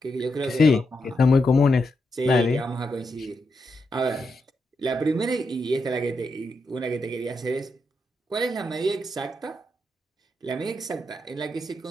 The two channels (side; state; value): both; normal; correlation 0.83